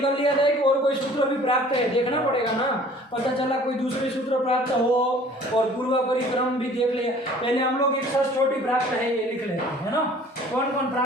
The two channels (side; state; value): both; normal; correlation 0.51